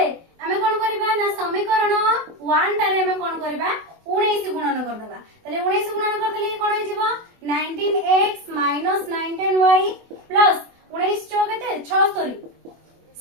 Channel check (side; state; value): left; late; 24 ms